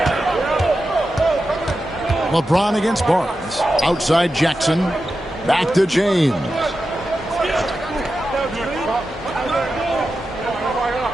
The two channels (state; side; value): normal; both; correlation 0.91